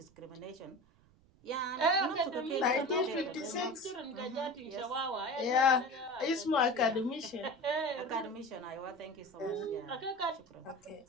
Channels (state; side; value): noise; right; rumble, 29 dB below the sound